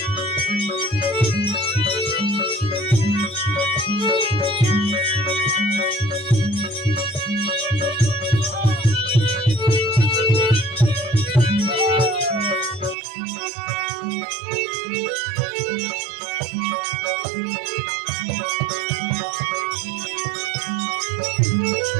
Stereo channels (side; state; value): left; drops out; at 13.0 s